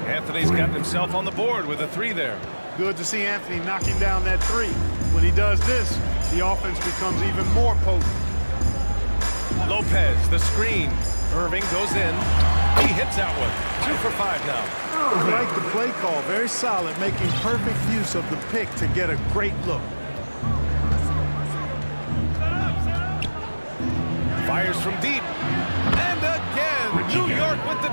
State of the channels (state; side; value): inverted; both; correlation -1.00